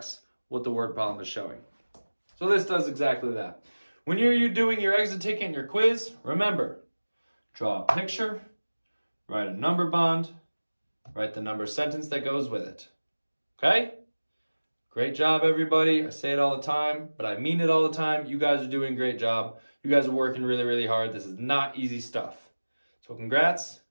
what the word problem is showing. So this does exactly that. When you're doing your exit ticket and your quiz, remember, draw a picture, write a number bond, write the number sentence that goes with it. Okay? Great job, everybody. I say it all the time, but I mean it all the time. You guys are doing a great job. You guys are working really, really hard. This is not easy stuff. So congrats.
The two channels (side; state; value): both; inverted; correlation -1.00